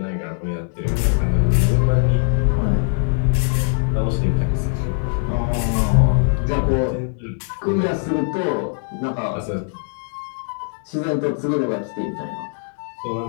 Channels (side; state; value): right; silent; digital silence